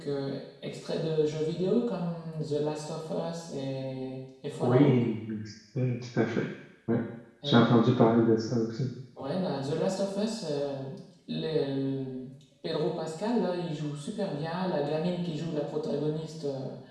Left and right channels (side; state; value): both; identical; correlation 1.00